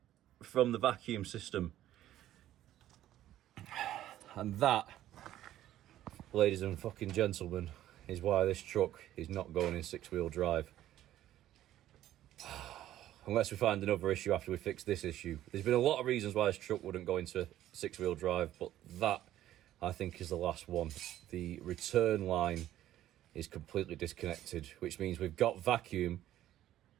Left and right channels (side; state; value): left; quieter; 13.0 dB